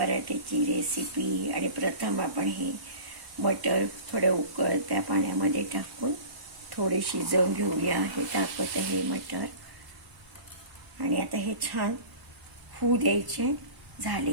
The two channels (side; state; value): left; late; 1.1 ms